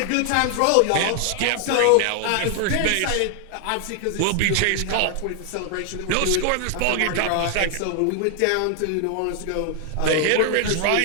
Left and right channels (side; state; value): both; different; correlation 0.00